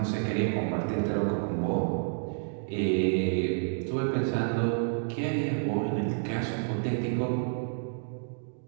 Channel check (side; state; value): left; silent; digital silence